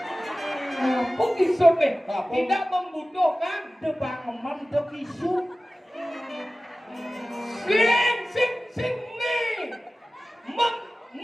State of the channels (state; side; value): normal; both; correlation 0.96